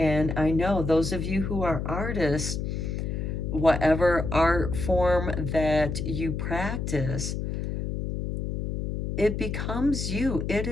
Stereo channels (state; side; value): noise; left; hum, 3 dB below the sound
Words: I know those of you who are artists, whatever art form that you practice, it becomes you. It